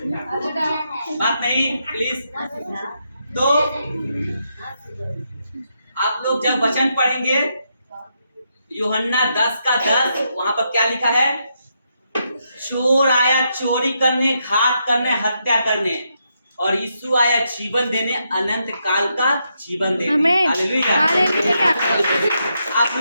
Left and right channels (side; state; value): both; inverted; correlation -0.81